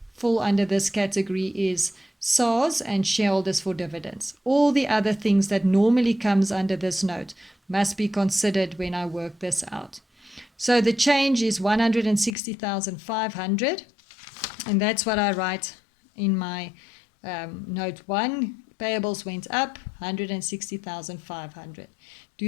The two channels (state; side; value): drops out; right; at 12.4 s